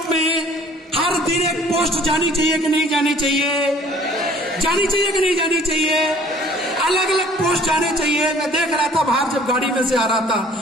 में हर दिन एक पोस्ट जानी चाहिए कि नहीं जानी चाहिए? जानी चाहिए कि नहीं जानी चाहिए? अलग अलग पोस्ट जाने चाहिए। मैं देख रहा था बाहर जब गाड़ी में से आ रहा था,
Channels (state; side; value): normal; both; correlation 0.54